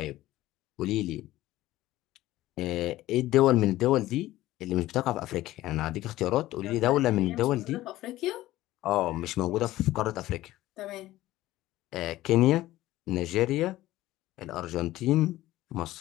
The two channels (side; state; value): right; quieter; 16.1 dB